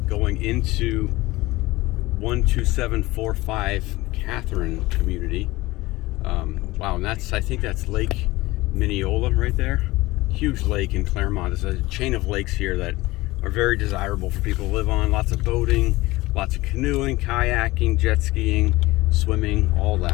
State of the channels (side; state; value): right; quieter; 19.7 dB